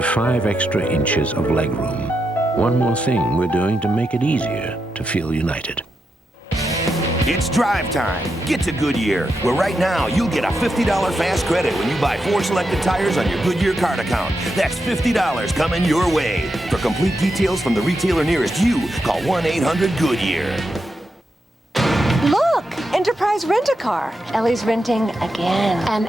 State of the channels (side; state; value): both; normal; correlation 0.85